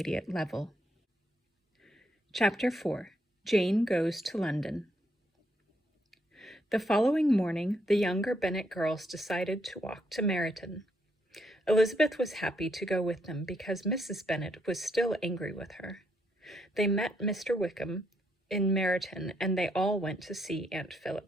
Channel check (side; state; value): both; normal; correlation 0.75